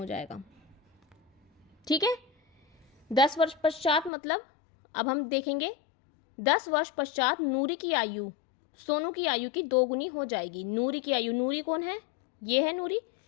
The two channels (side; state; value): right; drops out; at 4.1 s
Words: जाएगा। ठीक है, 10 वर्ष पश्चात मतलब अब हम देखेंगे 10 वर्ष पश्चात नूरी की आयु सोनू की आयु की 2 गुनी हो जाएगी। नूरी की आयु, नूरी कौन है, ये है नूरी,